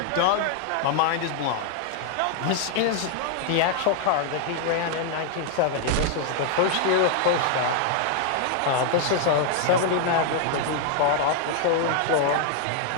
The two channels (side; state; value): both; different; correlation 0.00